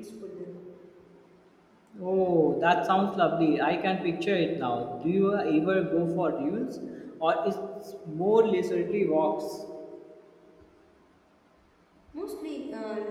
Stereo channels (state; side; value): identical; both; correlation 1.00